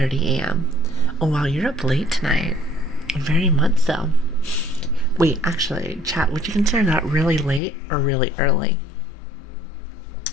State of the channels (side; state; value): right; drops out; at 7.6 s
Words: a.m. Oh wow, you're up late tonight. Very much so. Wait, actually, chat, would you consider that really late or really early?